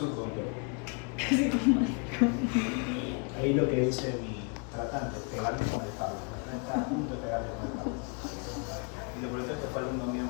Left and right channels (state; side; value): quieter; right; 35.7 dB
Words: del cuerpo. Ahí lo que dice mi tratante, pegarle con el cable. Está a punto de pegarle con el cable. Y lo por eso es que fue alumno mío